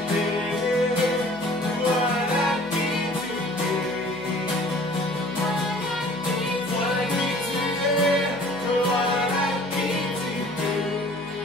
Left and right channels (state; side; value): noise; right; hum, 24 dB below the sound